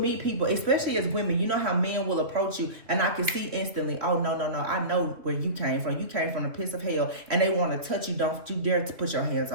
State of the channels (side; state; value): left; late; 3.0 ms